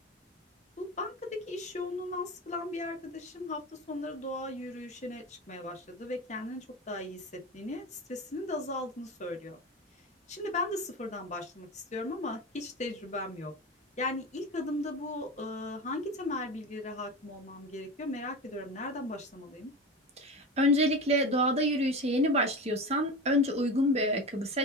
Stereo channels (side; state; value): both; normal; correlation 0.26